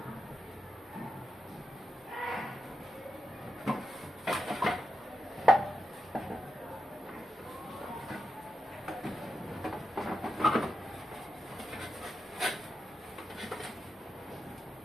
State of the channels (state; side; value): normal; both; correlation 0.88